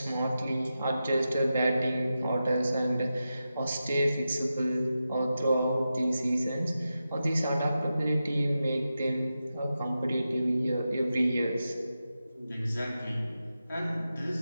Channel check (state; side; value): inverted; both; correlation -0.91